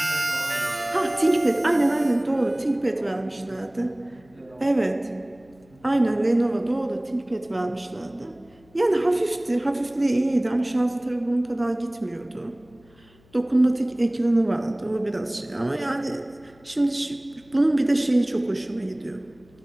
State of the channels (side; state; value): left; noise; hum, 30 dB below the sound